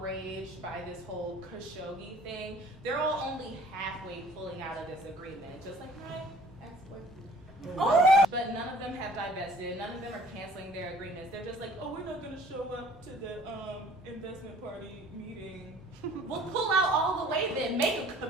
by this whole Khashoggi thing, they're all only halfway pulling out of this agreement, just like my ex-boyfriend. Oh! But none of them have divested. None of them are canceling their agreements. They're just like, oh, we're not going to show up to the investment party meeting. We'll pull out all the way then. Make a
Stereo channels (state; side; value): normal; both; correlation 0.52